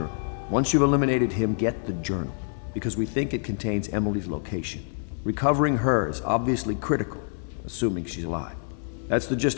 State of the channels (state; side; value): silent; right; 61 dB below the other